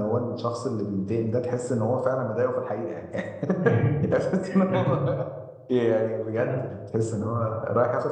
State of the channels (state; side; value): identical; both; correlation 1.00